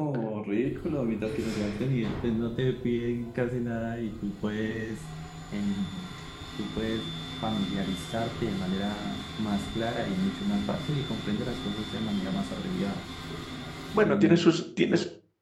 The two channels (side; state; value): both; identical; correlation 1.00